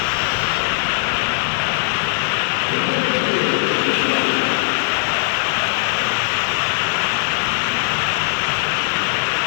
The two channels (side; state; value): right; silent; digital silence